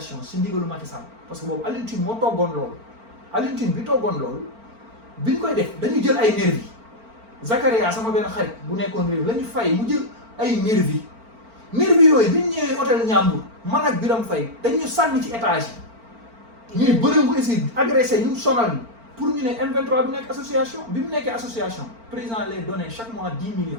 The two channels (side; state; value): left; late; 4.4 ms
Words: si ndigalu Macky Sall parce que boobu Alioune Tine moo toggoon loolu Alioune Tine bi toggoon loolu bi ñu koy def dañu jël ay nervi Zakaria sama benn xarit bu nekkoon réew la ñu fay mu jël ay nervi yooyu bi ñu ñëwee hôtel Ñambur man ak Biram Faye dañu sànni ci étage yi ñuy bërëngu aussi agressé ñu sonal ñu pour ñu ne M23 du nekk association bi mu nekkee association président lay donné chaque mois 10 millions